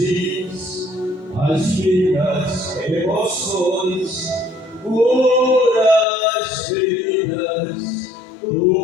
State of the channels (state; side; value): drops out; right; at 6.1 s